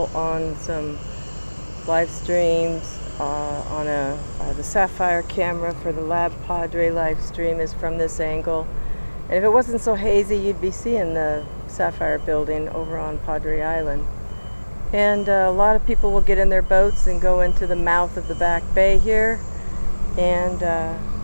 on some live streams. On the Sapphire camera for the Lab Padre live stream is from this angle. And if it wasn't so hazy, you'd be seeing the Sapphire building over on Padre Island. And a lot of people will get in their boats and go into the mouth of the back bay here and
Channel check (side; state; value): both; inverted; correlation -1.00